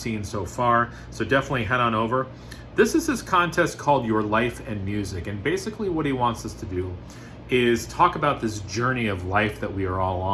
so far, so definitely head on over. This is his contest called Your Life and Music, and basically what he wants us to do is talk about this journey of life that we are all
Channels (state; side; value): identical; both; correlation 1.00